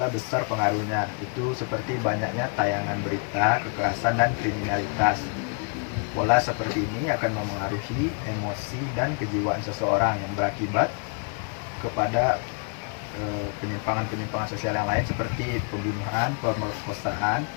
besar pengaruhnya. Itu seperti banyaknya tayangan berita, kekerasan, dan kriminalitas. Pola seperti ini akan memengaruhi emosi dan kejiwaan seseorang yang berakibat kepada penyimpangan-penyimpangan sosial yang lain seperti pembunuhan, pemerkosaan,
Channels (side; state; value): right; quieter; 36.3 dB